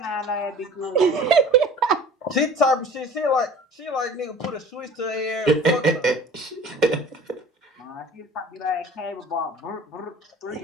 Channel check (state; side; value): normal; both; correlation 0.44